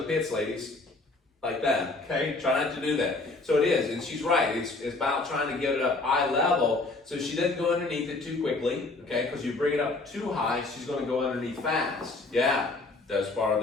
pits, ladies, like that, okay? Try not to do that. So it is, and she's right. It's about trying to get it up eye level so she doesn't go underneath it too quickly, okay? Because you bring it up too high, she's going to go underneath fast. Yeah, that's part of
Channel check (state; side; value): quieter; right; 3.3 dB